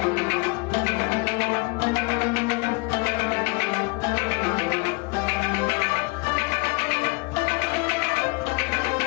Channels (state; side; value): quieter; right; 27.4 dB